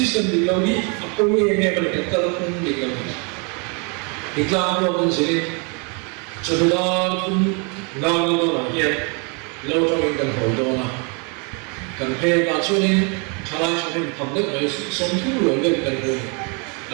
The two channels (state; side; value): quieter; left; 34.4 dB